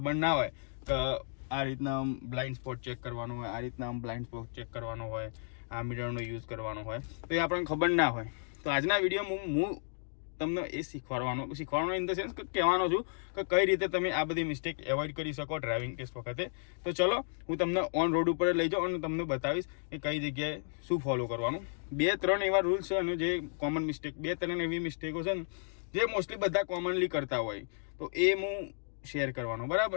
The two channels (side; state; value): right; silent; digital silence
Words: ના હોય કે આ રીતના બ્લાઇન્ડ સ્પોટ ચેક કરવાનો હોય, આ રીતના બ્લાઇન્ડ સ્પોટ ચેક કરવાનો હોય, આ મિરરનો યુઝ કરવાનો હોય, તો એ આપણને ખબર ના હોય. તો આજના વિડીયોમાં હું તમને એ શીખવાડવાનો ઇન ધ સેન્સ કે કહેવાનો છું કે કઈ રીતે તમે આ બધી મિસ્ટેક એવોઇડ કરી શકો ડ્રાઇવિંગ ટેસ્ટ વખતે. તો ચલો હું તમને ઓન રોડ ઉપર લઈ જાઉં અને તમને બતાવીશ કે કઈ જગ્યાએ શું ફોલો કરવાનું. 2-3 એવા રૂલ્સ છે અને જે કોમન મિસ્ટેક, 2-3 એવી મિસ્ટેકો છે ને જે મોસ્ટલી બધા કોમનલી કરતા હોય, તો એ હું શેર કરવાનો.